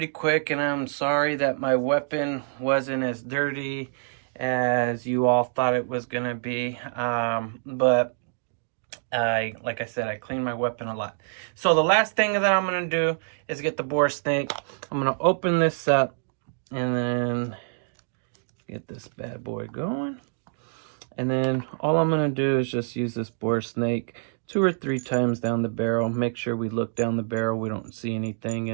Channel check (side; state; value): left; silent; digital silence